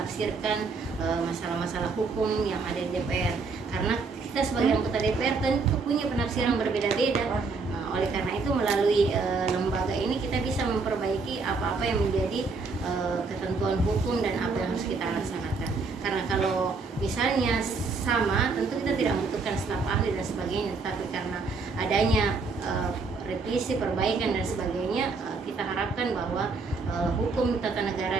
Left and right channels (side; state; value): left; quieter; 4.3 dB